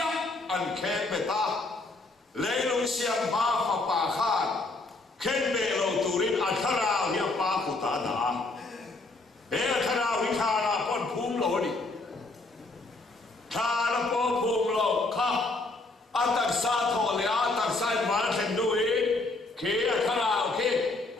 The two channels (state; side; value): quieter; right; 3.2 dB